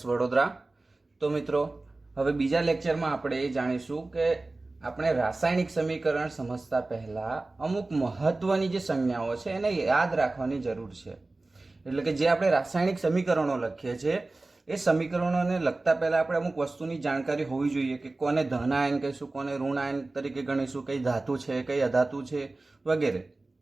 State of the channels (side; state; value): left; quieter; 3.1 dB